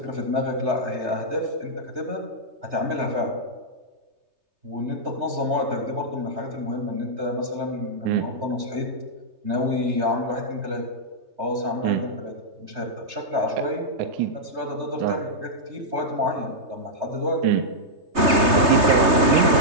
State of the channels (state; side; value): late; left; 3.3 ms